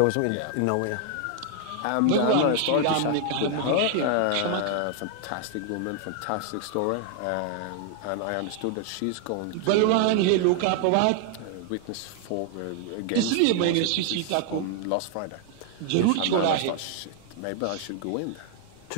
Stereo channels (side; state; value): both; different; correlation 0.00